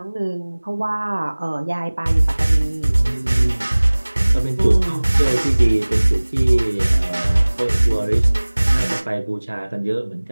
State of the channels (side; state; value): both; inverted; correlation -1.00